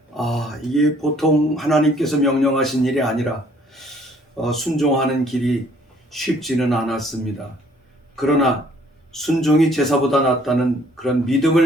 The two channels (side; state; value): both; normal; correlation 0.60